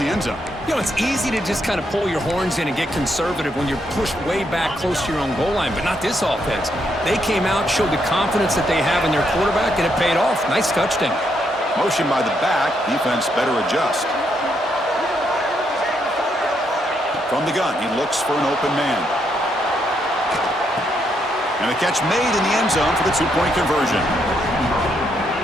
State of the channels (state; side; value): normal; both; correlation 0.77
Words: end zone. You know, it's easy to just kind of pull your horns in and get conservative when you're pushed way back close to your own goal line, but not this offense. They came out, showed the confidence that they have in their quarterback, and it paid off. Nice touchdown. Motion by the back. Defense better adjust. From the gun, he looks for an open man. And a catch made in the end zone for the 2-point conversion.